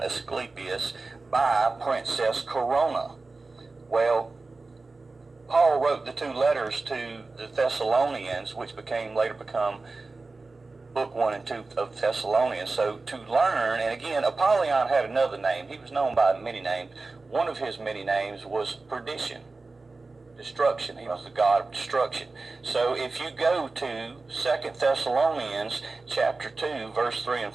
Asclepius, by Princess Corona. Well, Paul wrote the 2 letters to the Thessalonians, which later become book 1 and 2 of Thessalonians. So to learn, and again, Apollyon had another name. He was known by many names. One of his many names was perdition, destruction. He was the god of destruction. So if you go to 2 Thessalonians chapter 2 verse 3 and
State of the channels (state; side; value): quieter; left; 3.6 dB